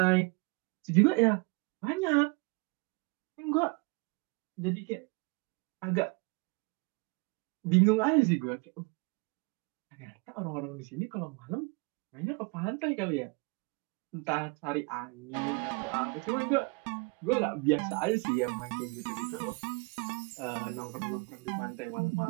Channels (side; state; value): left; quieter; 29.5 dB